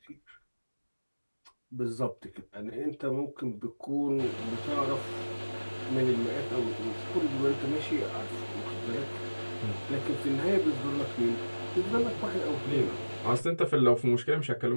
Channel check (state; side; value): inverted; both; correlation -1.00